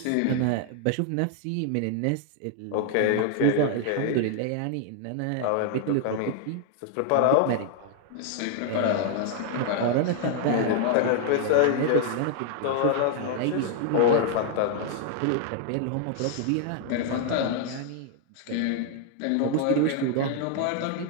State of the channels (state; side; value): different; both; correlation 0.00